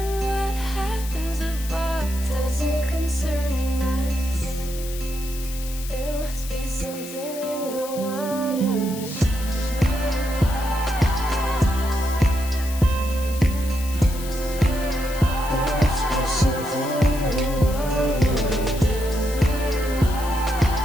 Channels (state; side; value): noise; left; hiss, 13 dB below the sound